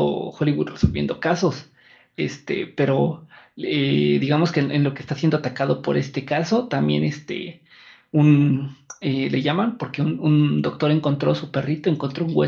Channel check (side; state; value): both; identical; correlation 1.00